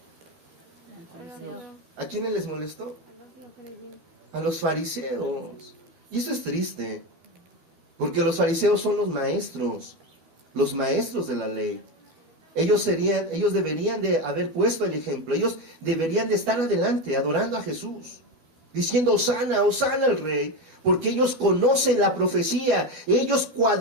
¿A quiénes les molestó? A los fariseos. Y eso es triste, porque los fariseos son los maestros de la ley. Ellos deberían de haber puesto el ejemplo. Ellos deberían de estar adelante, adorando a Jesús, diciendo Hosana, Hosana al Rey, porque ellos conocen la profecía. Ellos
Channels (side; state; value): left; late; 12 ms